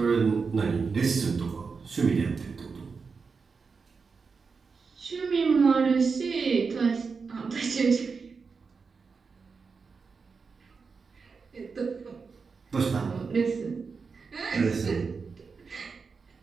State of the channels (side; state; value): left; quieter; 5.1 dB